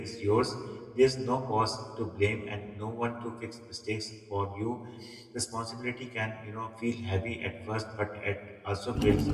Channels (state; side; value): identical; both; correlation 1.00